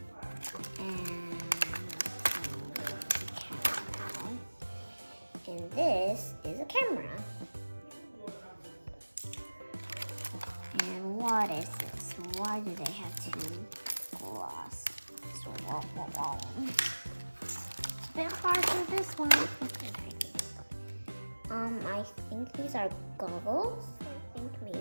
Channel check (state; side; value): inverted; both; correlation -1.00